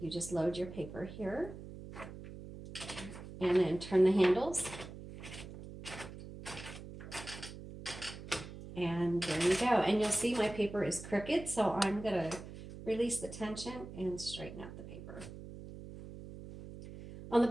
just load your paper here and then turn the handles. And there you go. And you'll see my paper is crooked, so I'm going to release the tension and straighten out the paper. On the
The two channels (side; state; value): right; noise; hum, 13 dB below the sound